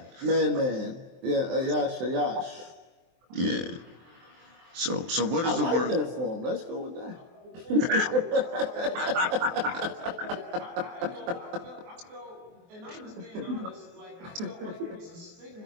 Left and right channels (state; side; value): late; left; 23 ms